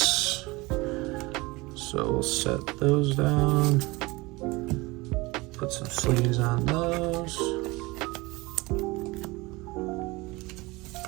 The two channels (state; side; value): quieter; left; 23.0 dB